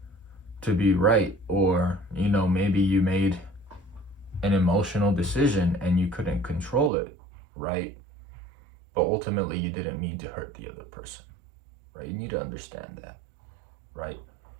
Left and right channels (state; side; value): drops out; left; at 6.9 s